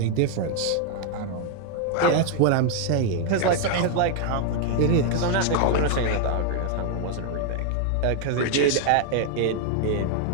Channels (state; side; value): different; both; correlation 0.00